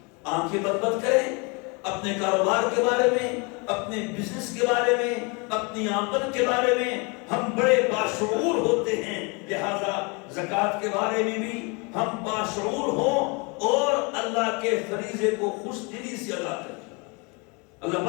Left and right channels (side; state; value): right; quieter; 30.7 dB